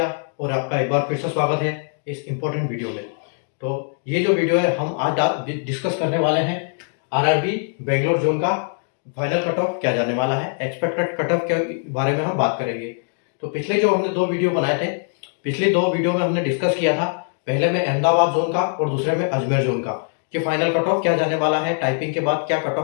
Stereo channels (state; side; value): silent; right; 58 dB below the other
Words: और आपका एक बार फिर से स्वागत है इस इम्पोर्टेंट वीडियो में। तो ये जो वीडियो है हम आज डिस्कस करने वाले हैं आरआरबी बेंगलोर जोन का फाइनल कट ऑफ क्या जाने वाला है, एक्सपेक्टेड कट ऑफ के बारे में हम बात करेंगे। तो पिछले जो हमने दो वीडियो बनाए थे, पिछले दो वीडियो में हमने डिस्कस किया था, पहले में अहमदाबाद जोन का और दूसरे में अजमेर जोन का, कि फाइनल कट ऑफ क्या जाने वाला है, टाइपिंग के बाद क्या कट